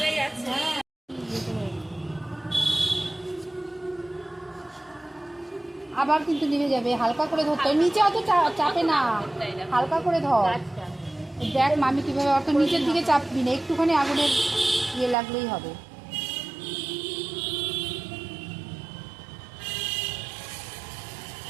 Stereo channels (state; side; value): drops out; left; at 15.2 s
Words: গেছে আবার কিন্তু নিভে যাবে হালকা করে ধরতে নিচে অত চাপে না হালকা করে ধর দেখ মামি কিভাবে অত নিচের দিকে চাপবি না একটুখানি আগুনের ইয়ে লাগলেই হবে